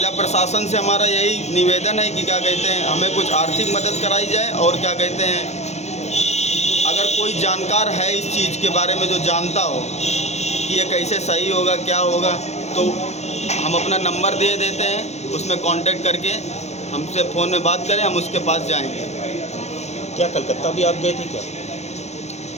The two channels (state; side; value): late; right; 0.32 ms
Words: प्रशासन से हमारा यही निवेदन है कि क्या कहते हैं, हमें कुछ आर्थिक मदद कराई जाए और क्या कहते हैं, अगर कोई जानकार है इस चीज़ के बारे में जो जानता हो कि ये कैसे सही होगा, क्या होगा, तो हम अपना नंबर दे देते हैं, उसमें कांटेक्ट करके हमसे फ़ोन में बात करें, हम उसके पास जाएंगे। क्या कलकत्ता भी आप गए थे क्या?